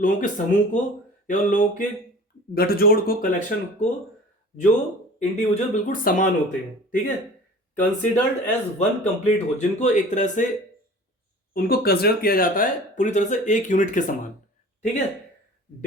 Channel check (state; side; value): normal; both; correlation 0.42